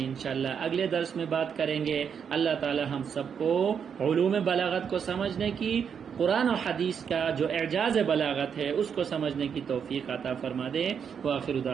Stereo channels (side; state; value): left; quieter; 7.2 dB